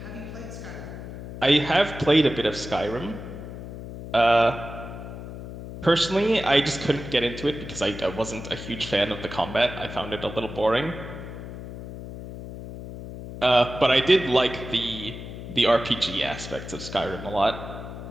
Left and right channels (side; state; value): left; noise; hum, 11 dB below the sound